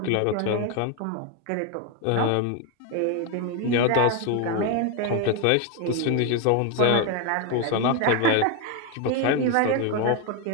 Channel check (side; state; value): both; different; correlation 0.01